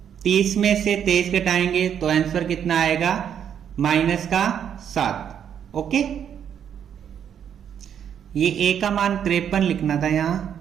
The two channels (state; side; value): quieter; left; 8.7 dB